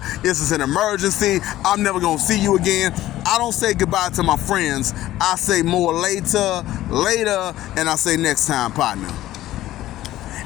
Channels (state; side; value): quieter; right; 14.7 dB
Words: This is an emergency. I'm never gonna see you again. I don't say goodbye to my friends. I say more later, and I say next time, partner.